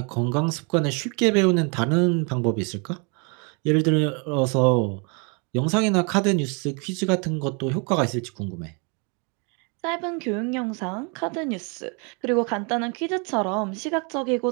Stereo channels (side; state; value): left; quieter; 34.3 dB